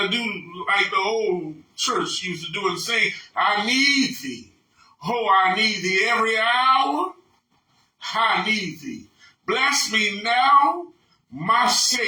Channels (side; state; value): both; identical; correlation 1.00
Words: to do like the old church used to do and say, I need thee. Oh, I need thee every hour. I need thee. Bless me now, my